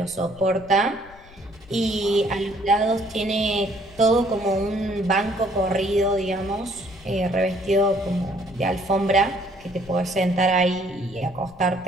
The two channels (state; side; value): noise; left; rumble, 23 dB below the sound